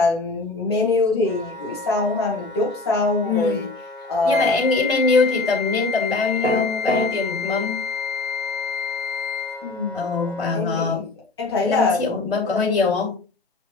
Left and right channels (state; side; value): quieter; right; 3.5 dB